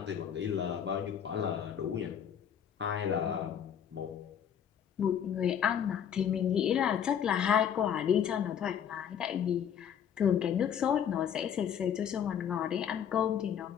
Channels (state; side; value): quieter; right; 8.7 dB